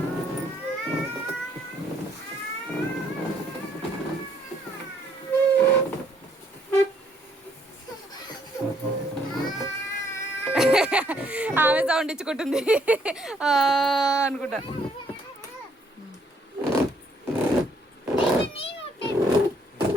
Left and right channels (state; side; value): normal; both; correlation 0.68